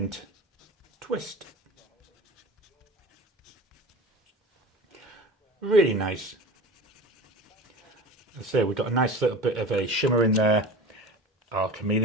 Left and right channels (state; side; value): normal; both; correlation 0.35